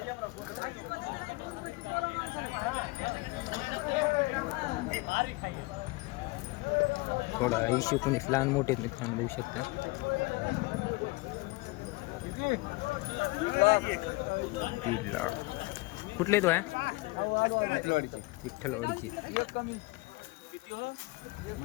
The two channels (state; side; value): quieter; right; 23.3 dB